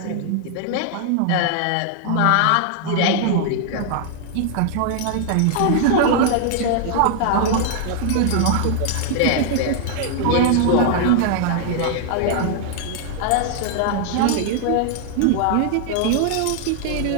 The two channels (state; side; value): different; both; correlation 0.00